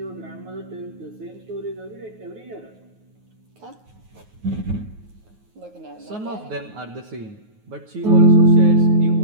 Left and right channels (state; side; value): late; left; 9.4 ms